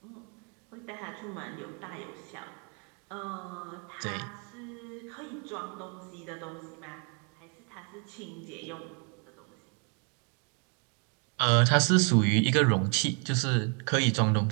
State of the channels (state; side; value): quieter; left; 37.4 dB